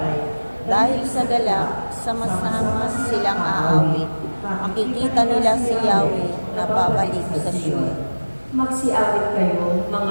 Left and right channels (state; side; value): inverted; both; correlation -1.00